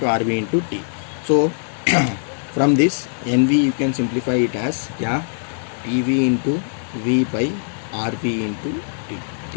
RV into T. So from this NV you can simplify it as क्या? PV into V by RV into T,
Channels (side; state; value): right; silent; digital silence